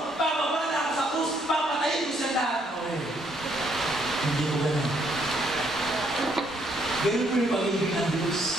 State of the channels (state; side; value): normal; both; correlation 0.70